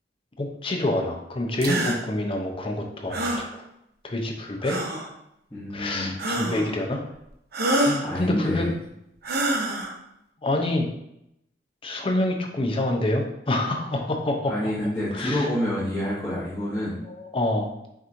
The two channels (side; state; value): both; normal; correlation 0.56